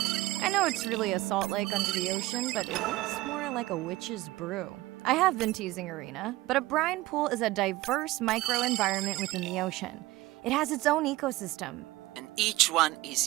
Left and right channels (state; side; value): quieter; left; 18.5 dB